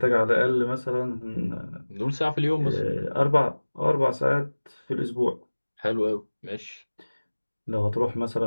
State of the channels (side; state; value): both; inverted; correlation -1.00